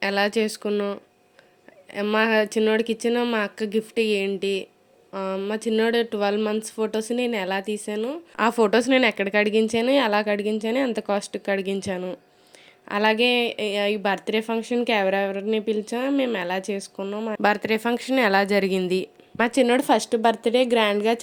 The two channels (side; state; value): both; identical; correlation 1.00